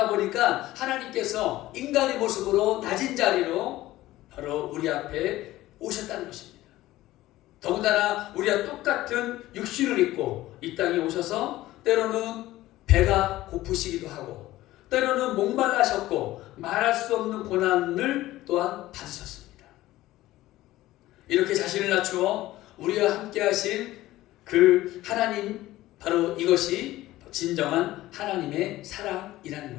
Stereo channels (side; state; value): right; quieter; 16.3 dB